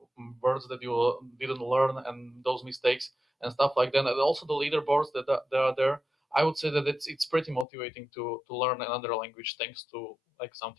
words that you didn't learn, and those mistakes and stuff like that, and also the leaderboards that are there, I would say that it's pretty motivating to learn another language thanks to like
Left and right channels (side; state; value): right; drops out; at 7.7 s